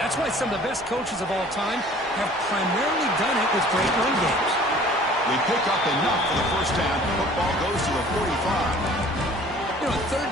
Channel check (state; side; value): normal; both; correlation 0.50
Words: why some of the best coaches of all time have primarily done it with great run games. We pick up enough for the first down. Football goes to the 45. You know, third